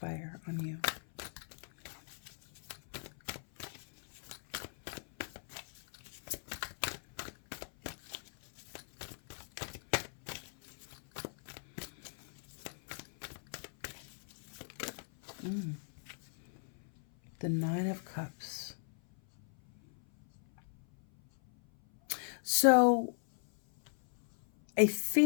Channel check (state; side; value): silent; right; 53 dB below the other